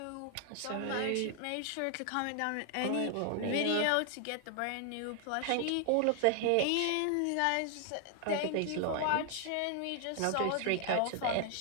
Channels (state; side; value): different; both; correlation 0.00